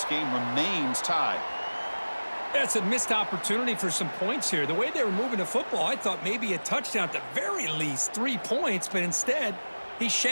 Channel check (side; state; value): both; inverted; correlation -1.00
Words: game remains tied. That's a missed opportunity for some points here. The way they were moving the football, I thought maybe a touchdown, at the very least 3 points, but instead, he